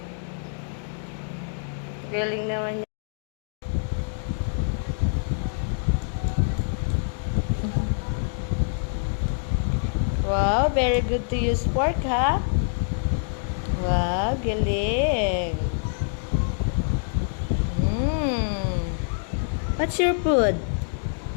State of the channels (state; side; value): silent; right; digital silence